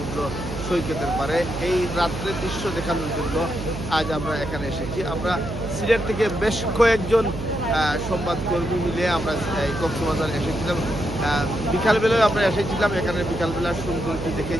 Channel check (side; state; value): right; noise; hum, 7 dB below the sound